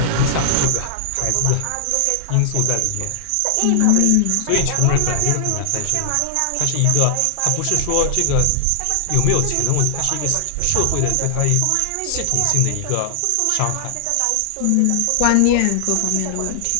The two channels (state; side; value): different; both; correlation 0.00